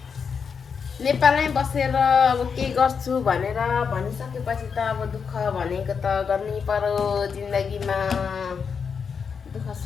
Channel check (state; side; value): quieter; right; 6.2 dB